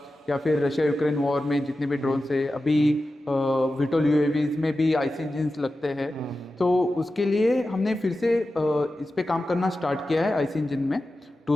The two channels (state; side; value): normal; both; correlation 0.93